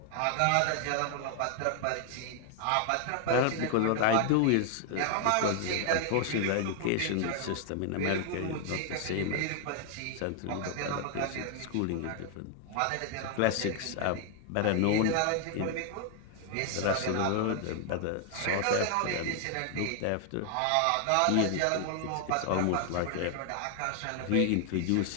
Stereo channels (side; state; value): both; different; correlation 0.00